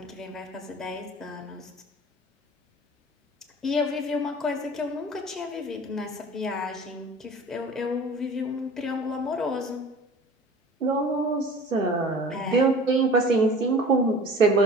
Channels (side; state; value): both; normal; correlation 0.43